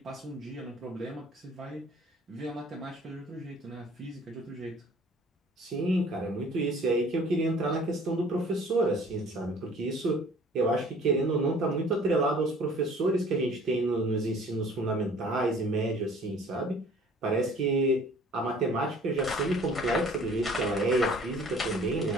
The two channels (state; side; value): normal; both; correlation 0.51